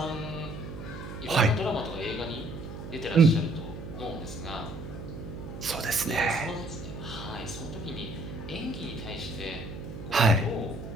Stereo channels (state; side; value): noise; right; hum, 10 dB below the sound